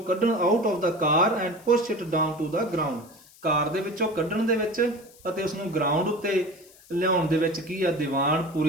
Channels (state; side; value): noise; left; hiss, 25 dB below the sound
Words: ਕੱਢਣ, out of the car and push it down to the ground, car ਦੇ ਵਿੱਚੋਂ ਕੱਢਣ ਦੇ ਵਿੱਚ ਅਤੇ ਉਸ ਨੂੰ ਗਰਾਊਂਡ ਉੱਤੇ ਲਿਆਉਣ ਦੇ ਵਿੱਚ ਕੀ ਆ, ਦੀਵਾਨ